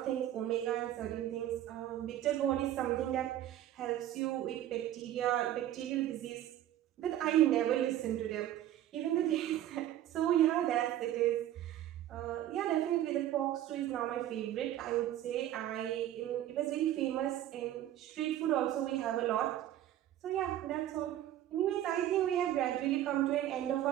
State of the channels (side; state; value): left; quieter; 12.5 dB